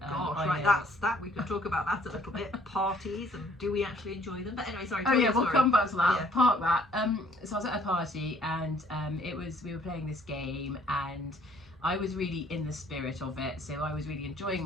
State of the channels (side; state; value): both; normal; correlation 0.61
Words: right, that's that. We can talk about that a little bit. Parties, and do we actually enjoy them? But anyway, sorry. Oh yeah, we'll come back to that. Yeah. Park that. So I was at a party, and we were playing this game, and I was really in the spirit of it. So I was really enjoying